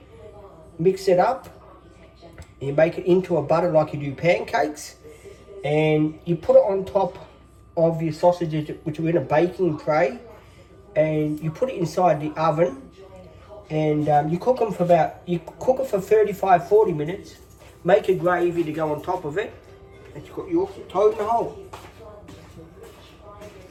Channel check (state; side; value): identical; both; correlation 1.00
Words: Mix it up. You make it into a butter like you do pancakes, and you put it on top of your sausages, which are in a baking tray, and you put it inside the oven, and you cook them for 35-40 minutes. Make a gravy to go on top of it, and you've got your toad in the hole.